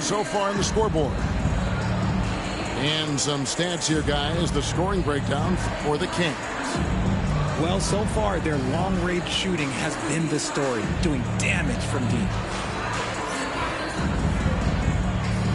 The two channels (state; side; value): identical; both; correlation 1.00